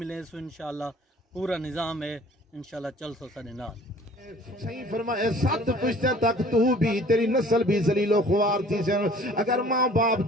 सो इंशाल्लाह पूरा निज़ाम है इंशाल्लाह चल सो साडे नाल। सही फरमाया 7 पुश्ते तक तू भी तेरी नस्ल भी जलीलो ख्वार थी सन। अगर माँ बाप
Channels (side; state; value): both; normal; correlation 0.51